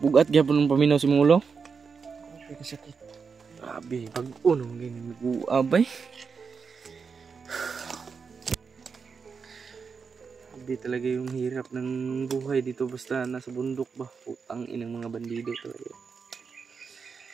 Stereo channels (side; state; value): left; quieter; 5.6 dB